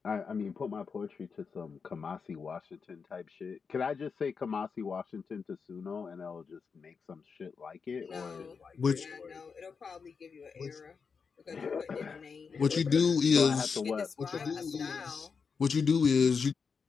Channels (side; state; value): right; quieter; 5.6 dB